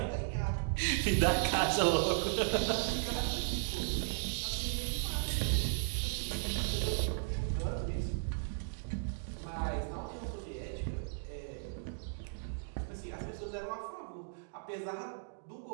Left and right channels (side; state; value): left; silent; digital silence